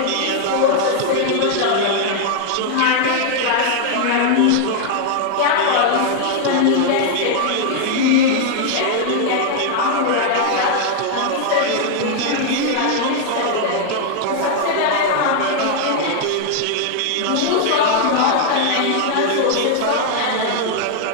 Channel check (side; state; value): both; different; correlation 0.00